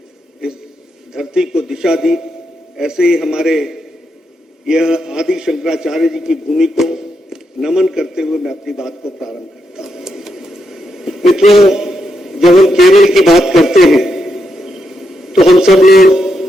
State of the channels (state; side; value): normal; both; correlation 0.82